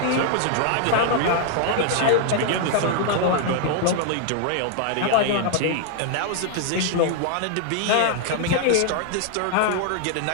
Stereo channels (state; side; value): different; both; correlation 0.00